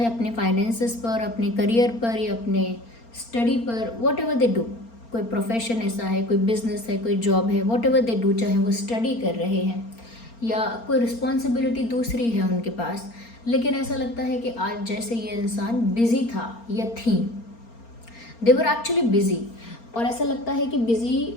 अपने फाइनेंसेस पर, अपने करियर पर, या अपने स्टडी पर, वॉट एवर दे डू। कोई प्रोफेशन ऐसा है, कोई बिजनेस है, कोई जॉब है, वॉट एवर दे डू, चाहे वो स्टडी कर रहे हैं या कोई रिस्पॉन्सिबिलिटी दूसरी है उनके पास, लेकिन ऐसा लगता है कि आज जैसे ये इंसान बिजी था या थी, दे वर एक्चुअली बिजी। और ऐसा लगता है कि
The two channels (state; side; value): late; right; 4.3 ms